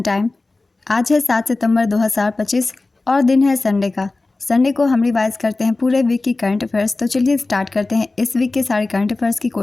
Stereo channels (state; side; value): quieter; right; 3.3 dB